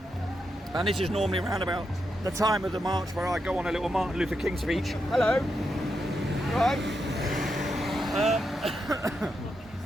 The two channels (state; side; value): normal; both; correlation 0.84